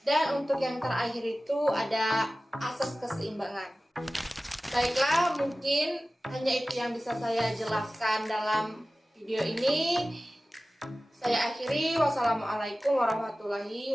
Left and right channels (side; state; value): both; normal; correlation 0.96